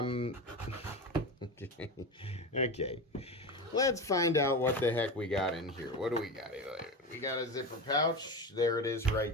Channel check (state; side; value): normal; both; correlation 0.23